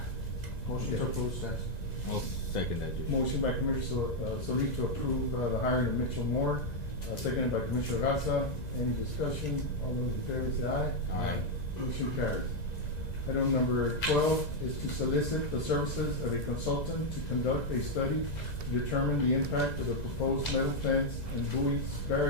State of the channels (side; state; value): right; late; 1.9 ms